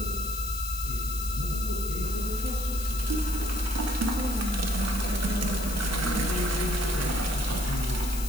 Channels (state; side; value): noise; left; hiss, 8 dB below the sound